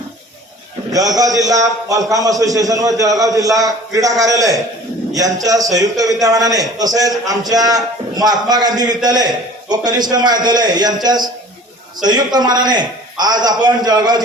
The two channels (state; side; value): normal; both; correlation 0.46